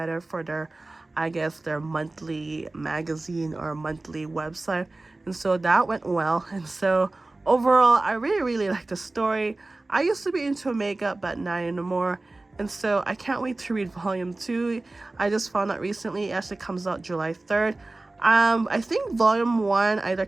for their, I guess, their monthly magazine or monthly website. And so that went well. And so overall, I really like the story. I used to be into makeup, but not anymore. And so I can't wait to read volume 2. I just found out recently it actually comes out July 3rd. I think volume 1 either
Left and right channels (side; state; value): left; quieter; 3.0 dB